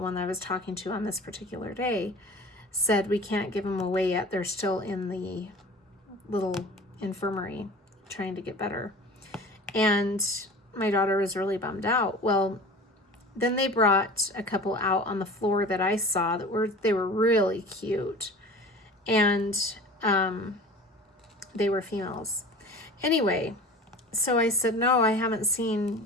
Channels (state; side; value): normal; both; correlation 0.39